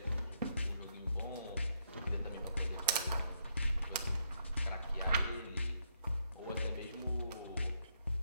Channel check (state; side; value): inverted; both; correlation -0.76